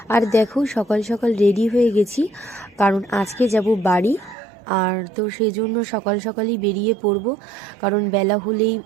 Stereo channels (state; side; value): drops out; left; at 4.4 s